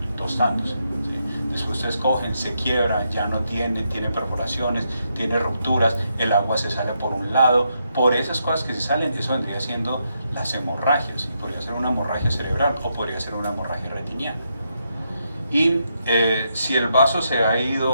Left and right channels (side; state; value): both; inverted; correlation -0.80